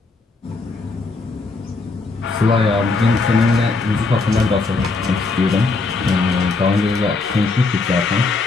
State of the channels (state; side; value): quieter; right; 3.9 dB